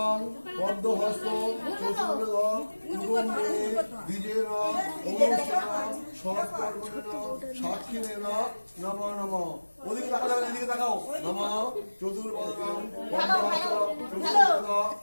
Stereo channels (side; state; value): both; inverted; correlation -1.00